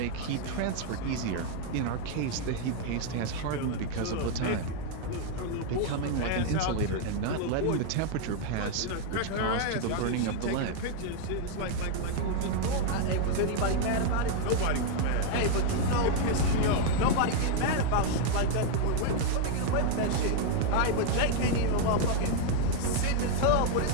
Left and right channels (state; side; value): different; both; correlation 0.00